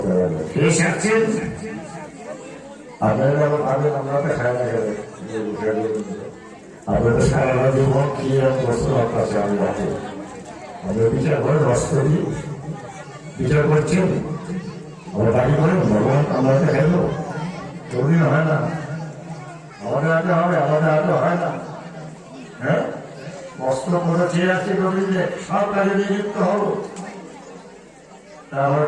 লাগবে। কে সারছেন আপনারা? আমরা তো খাই না, আপনারা তো সারা জীবন কি বস্তু আপনার আমি রাখি, আমরা বিচার করে রস করি, বিচার করছেন, আমরা দাবি করেন ভগবান আমরা খাইল, কোনদিন হয় না, আমাদের হাতে হবে, আমাদের হাতে হয় না। হ্যাঁ, কষ্ট করে চেয়ে আছে রবীন্দ্র সব কাজে নিযুক্ত হবো। তারপর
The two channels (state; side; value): identical; both; correlation 1.00